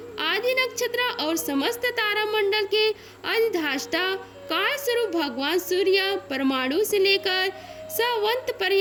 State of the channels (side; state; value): both; identical; correlation 1.00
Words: आदि नक्षत्र और समस्त तारा मंडल के अधिष्ठाता काल स्वरूप भगवान सूर्य परमाणु से लेकर सवंत